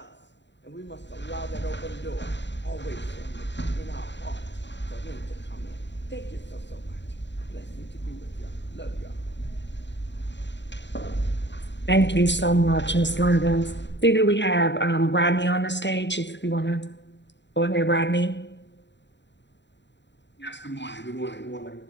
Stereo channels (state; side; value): late; right; 0.52 ms